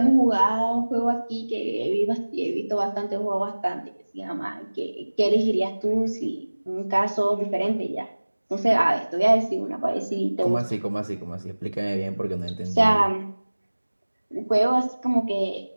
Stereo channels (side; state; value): both; inverted; correlation -1.00